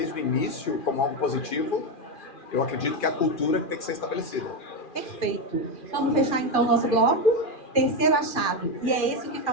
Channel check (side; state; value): right; late; 2.4 ms